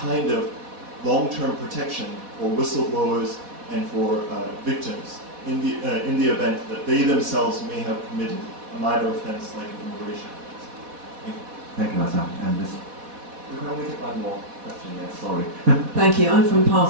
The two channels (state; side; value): late; left; 4.1 ms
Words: of long-term protection for whistleblowers and for victims in the event that they themselves may have committed a minor offense like an immigration offense. Thank you, Hassan. And this, we can only take one more question. Yes, sorry. Thank you. I'm from